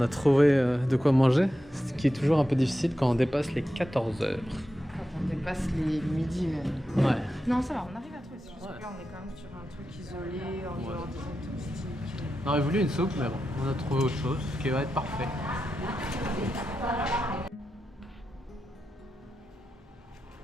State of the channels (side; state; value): both; normal; correlation 0.89